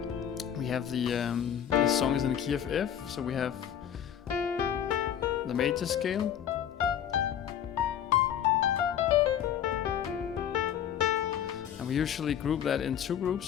We have the song is in the key of F, so we have the major scale. And we usually group that in 2 groups,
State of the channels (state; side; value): quieter; right; 9.6 dB